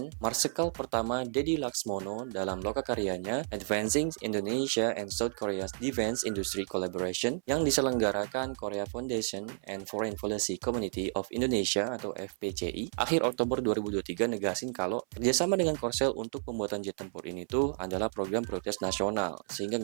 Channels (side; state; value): left; silent; 57 dB below the other